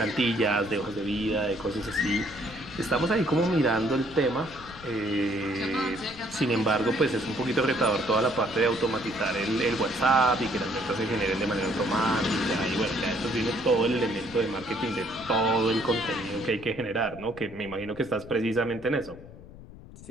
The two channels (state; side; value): noise; left; rumble, 17 dB below the sound